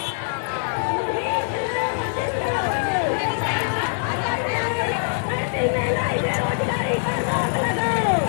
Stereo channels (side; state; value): right; silent; digital silence